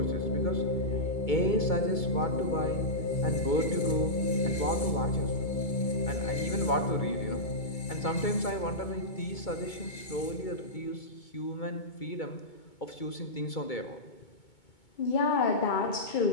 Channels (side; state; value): right; late; 2.2 ms